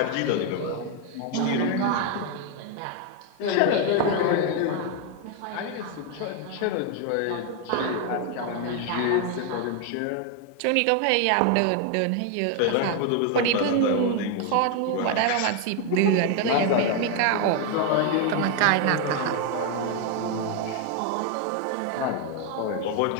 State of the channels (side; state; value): both; different; correlation 0.01